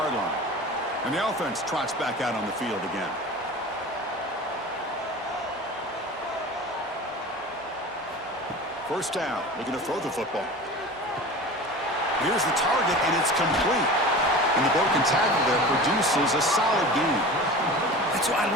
line. And the offense trots back out on the field again. First down, looking to throw the football. Here's the target, and it's complete. And the broken tackle there produces a solid gain. That's what I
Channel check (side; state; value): both; normal; correlation 0.35